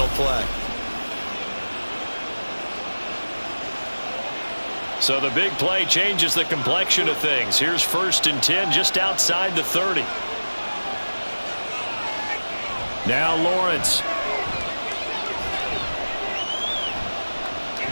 play. So the big play changes the complexion of things. Here's 1st and 10 just outside the 30. Now Lawrence.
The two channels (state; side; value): inverted; both; correlation -1.00